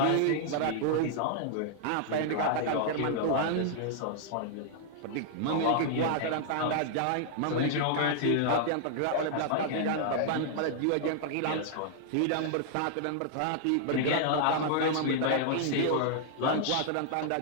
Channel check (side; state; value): both; different; correlation -0.01